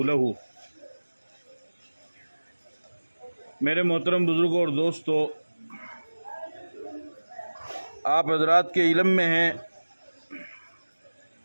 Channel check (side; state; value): both; inverted; correlation -1.00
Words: लहू। मेरे मोहतरम बुज़ुर्गों और दोस्तों, आप हज़रात के इल्म में हैं